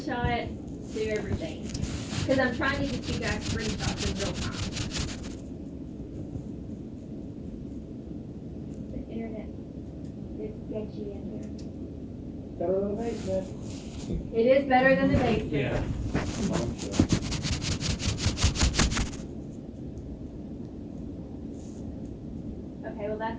do everything. Because I'm trying to get you guys screenshots in real time. The internet is sketchy in here. Better than the basement. It is better than the basement. Yeah. Okay, well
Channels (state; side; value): identical; both; correlation 1.00